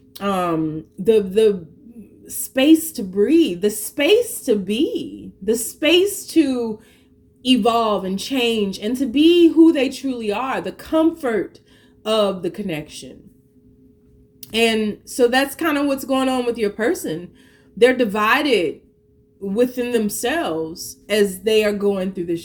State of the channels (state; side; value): identical; both; correlation 1.00